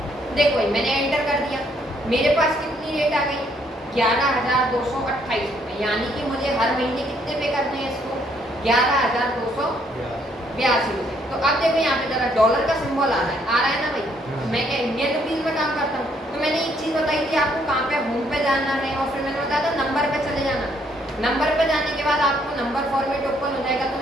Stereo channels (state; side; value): normal; both; correlation 0.69